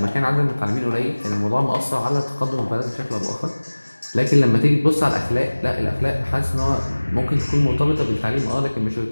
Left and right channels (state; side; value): inverted; both; correlation -1.00